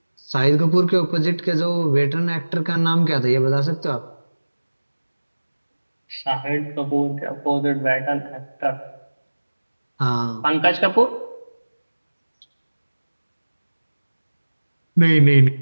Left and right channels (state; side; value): inverted; both; correlation -1.00